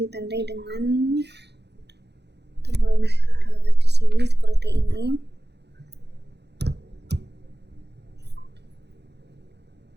dengan tombol. Nah, di sini seperti ini.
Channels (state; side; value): late; left; 0.49 ms